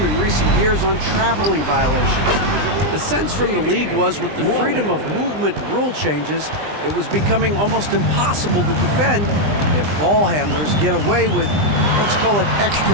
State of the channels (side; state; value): left; late; 20 ms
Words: in recent years on traveling violations. The sense from the league was with the freedom of movement rule changes, it was becoming almost impossible to defend if ball handlers get away with, let's call it,